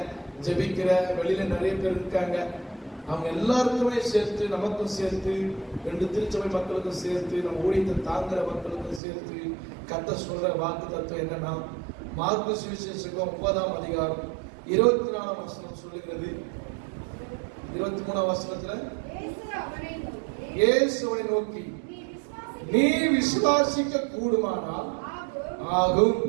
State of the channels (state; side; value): drops out; left; at 9.0 s